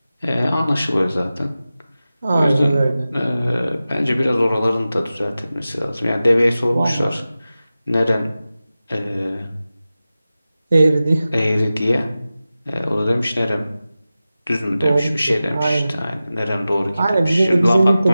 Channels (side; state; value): both; inverted; correlation -0.95